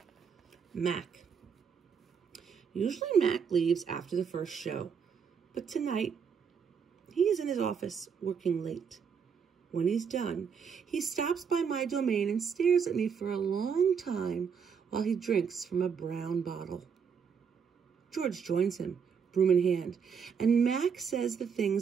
Mac. Usually Mac leaves after the first show, but tonight he is in his office working late. When he's done, he stops by my domain and stares at me for a long time while he drinks from a brown bottle. George joins him, broom in hand, and Mac says the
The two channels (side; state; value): left; quieter; 6.6 dB